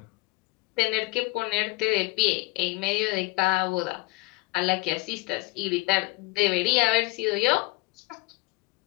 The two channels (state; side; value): quieter; right; 22.4 dB